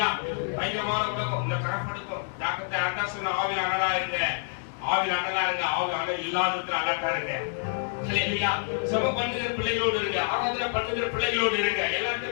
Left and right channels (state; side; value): silent; right; digital silence